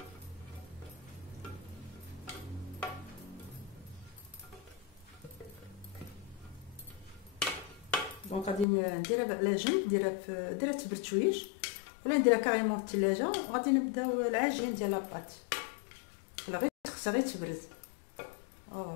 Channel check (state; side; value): drops out; right; at 8.7 s